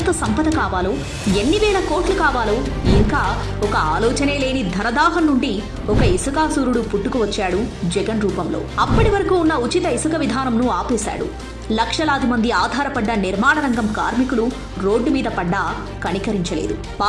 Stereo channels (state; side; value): identical; both; correlation 1.00